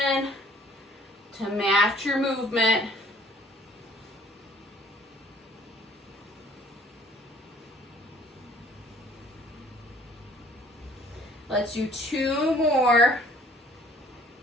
to match your movement. Let's do 2 more.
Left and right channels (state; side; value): normal; both; correlation 0.56